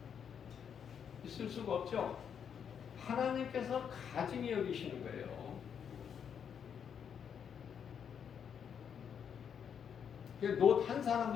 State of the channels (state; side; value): quieter; right; 7.7 dB